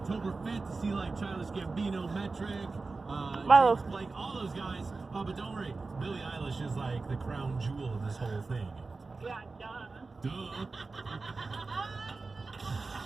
5th to see like Childish Gambino, Metric, Milo. James Blake, all those guys. But don't worry, Billie Eilish is like the crown jewel of this whole thing. Yeah, duh. Duh.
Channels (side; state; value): left; quieter; 3.8 dB